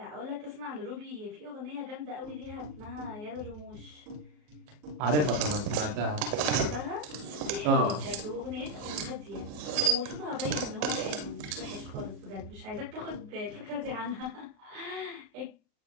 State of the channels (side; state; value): left; late; 40 ms